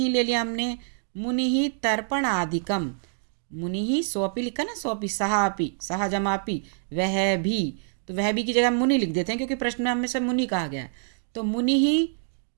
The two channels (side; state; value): left; silent; digital silence